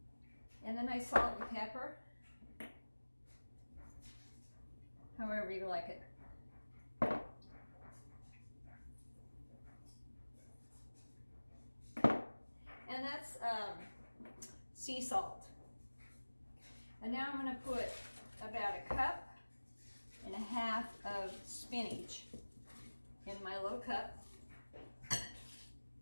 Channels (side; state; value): both; inverted; correlation -1.00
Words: And then I salt and pepper, however you like it. And that's sea salt. And now I'm going to put about 1.5 cups of spinach in my little cup.